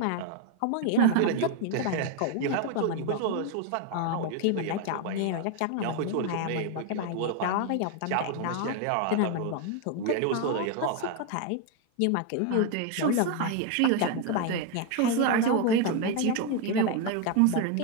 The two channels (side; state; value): both; different; correlation 0.01